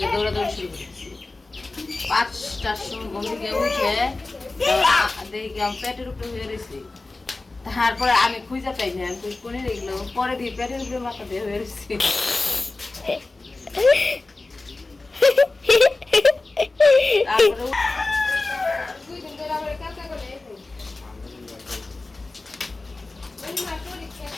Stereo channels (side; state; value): right; quieter; 3.3 dB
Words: দৌড়াদৌড়ি শুরু করেছি। 5টার সময় ঘুম থেকে উঠে দেখি আমি পেটের উপরে হয়ে রয়েছি। তারপরে আমি খুঁজে পাই না, আমি কোনে দেখলো পরে দিয়ে পেটের উপরে মাথা দিয়ে হয়ে রয়েছি। তারপরে